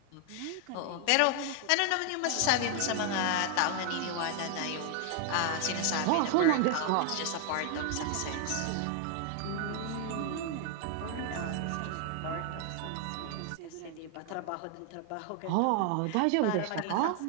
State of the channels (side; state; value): both; different; correlation 0.00